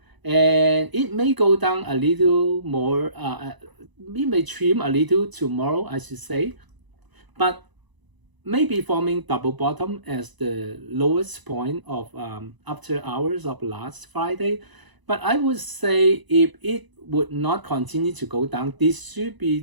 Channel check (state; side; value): late; left; 1.0 ms